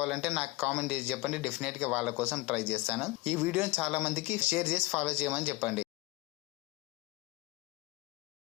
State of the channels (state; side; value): quieter; right; 21.6 dB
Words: నాకు కామెంట్ చేసి చెప్పండి. డెఫినెట్ గా వాళ్ళ కోసం ట్రై చేస్తాను. ఈ వీడియోని చాలా మందికి షేర్ చేసి ఫాలో చేయమని చెప్పండి.